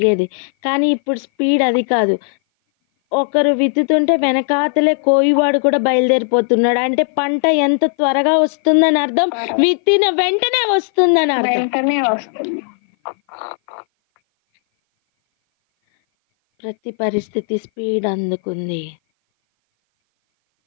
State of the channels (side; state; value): right; silent; 57 dB below the other